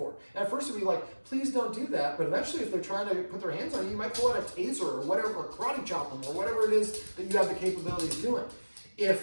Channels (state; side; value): inverted; both; correlation -1.00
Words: And at first it'll be like, please don't do that, but eventually if they're trying to put their hands on you, you might pull out a taser or whatever, or karate chop them, or whatever it is that you have the capability of doing.